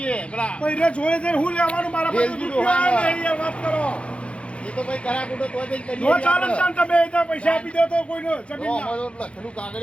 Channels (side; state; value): right; late; 0.060 ms